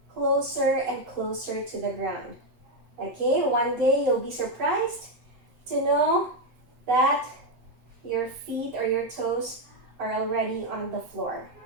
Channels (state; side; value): late; left; 8.0 ms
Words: closer and closer to the ground, okay? One day you'll be surprised to know that your feet or your toes are already on the floor.